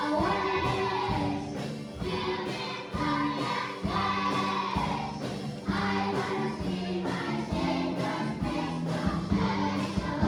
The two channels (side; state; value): both; identical; correlation 1.00